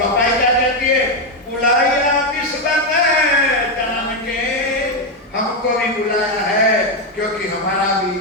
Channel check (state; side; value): normal; both; correlation 0.05